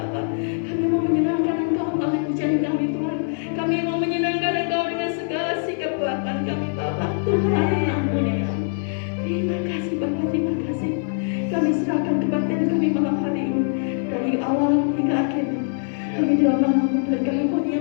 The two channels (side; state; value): right; silent; digital silence